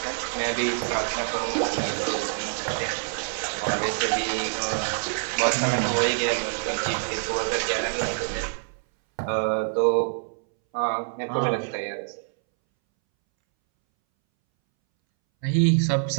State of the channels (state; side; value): silent; left; 61 dB below the other